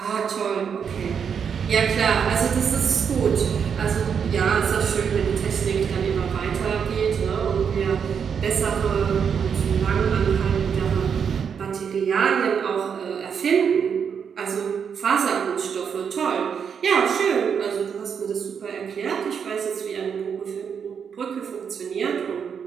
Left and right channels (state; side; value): quieter; left; 7.0 dB